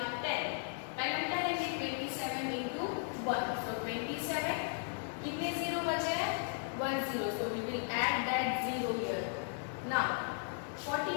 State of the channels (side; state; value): right; silent; digital silence